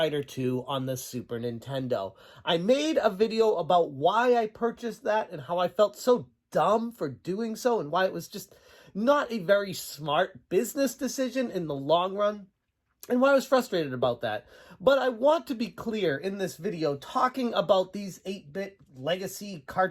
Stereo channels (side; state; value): both; identical; correlation 1.00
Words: 2 on the Super Nintendo. I made a video about why I purchased that and how I felt so dumb for doing so and why it was just not a very smart business decision in the long run, and why I was frustrated about that. But I want to be clear in this video, talking about these 8-bit Legacy